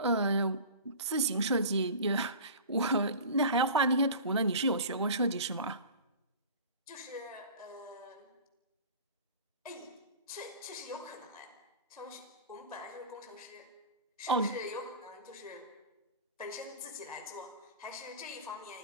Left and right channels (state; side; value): inverted; both; correlation -0.37